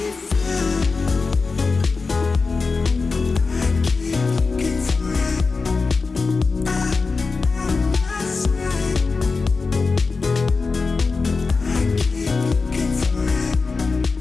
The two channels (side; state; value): right; quieter; 4.3 dB